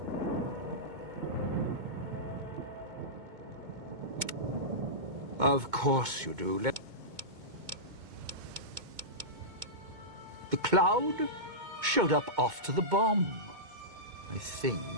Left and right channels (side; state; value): left; late; 2.2 ms